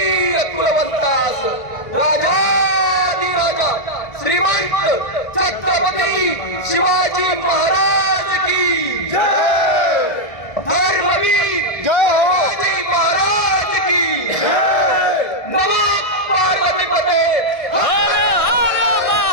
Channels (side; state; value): right; late; 1.6 ms